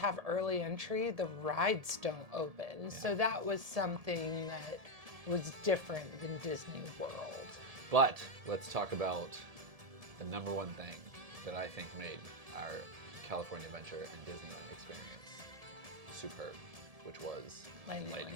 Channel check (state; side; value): late; left; 1.7 ms